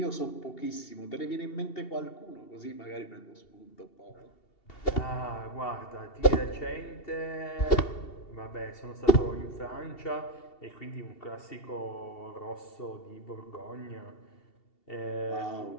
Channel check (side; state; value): right; late; 2.7 ms